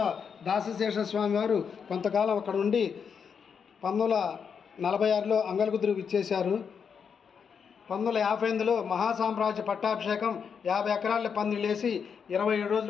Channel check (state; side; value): quieter; right; 6.7 dB